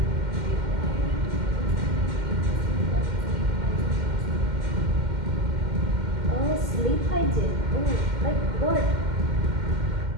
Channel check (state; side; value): late; left; 2.1 ms